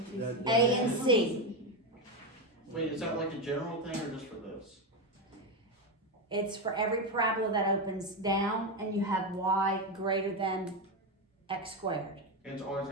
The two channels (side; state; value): both; normal; correlation 0.11